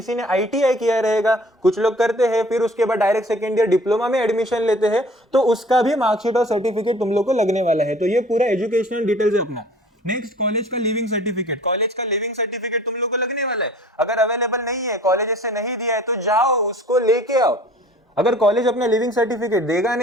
ने आईटीआई किया रहेगा, कुछ लोग करते हैं, फिर उसके बाद डायरेक्ट सेकेंड ईयर डिप्लोमा में एडमिशन लेते हैं, तो उसका भी मार्कशीट और सर्टिफिकेट तुम लोग को लगने वाला है। तो ये पूरा एजुकेशनल डिटेल्स है अपना। नेक्स्ट, कॉलेज का लिविंग सर्टिफिकेट। कॉलेज का लिविंग सर्टिफिकेट तुम लोग को लगने वाला है। अगर अवेलेबल नहीं है, कॉलेज से नहीं दिया है, तो जाओ उसको लेके आओ। अगर कॉलेज अपना लिविंग सर्टिफिकेट देगा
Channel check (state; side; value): normal; both; correlation 0.49